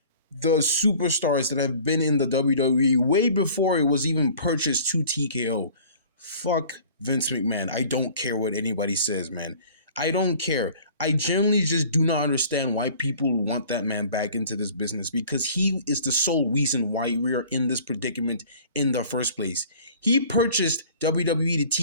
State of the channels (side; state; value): both; inverted; correlation -0.48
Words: the superstars that have been in the WWE way before it was even purchased to TKO. Fuck Vince McMahon. I don't care what anybody says, man. I don't care. I genuinely just do not understand why people want that man back into this business, because he is the sole reason why we are in this predicament in the first place. He purchased WWE